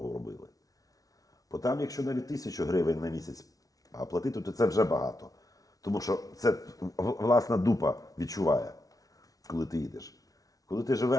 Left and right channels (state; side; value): late; right; 0.18 ms